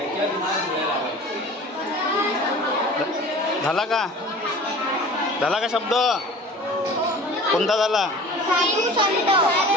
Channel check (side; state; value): both; normal; correlation 0.42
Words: झाला का? झाला का शब्द? कोणता झाला?